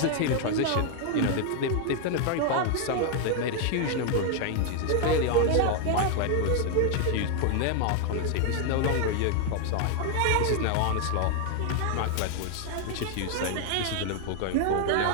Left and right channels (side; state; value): both; different; correlation 0.00